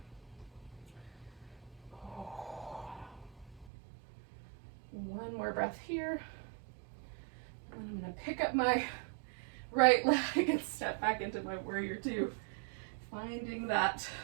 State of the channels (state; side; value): drops out; left; at 3.7 s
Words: more breath here. And I'm going to pick up my right leg and step back into my warrior two. Finding that